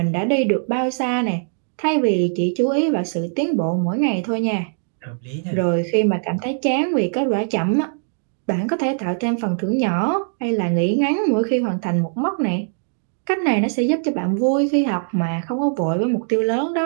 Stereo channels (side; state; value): left; silent; digital silence